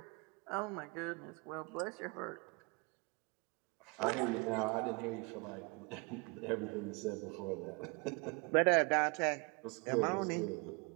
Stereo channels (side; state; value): left; quieter; 30.0 dB